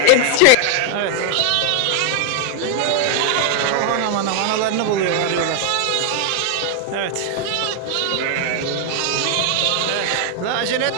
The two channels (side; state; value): both; different; correlation 0.00